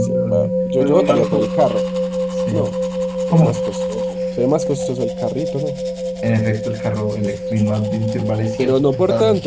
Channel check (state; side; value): identical; both; correlation 1.00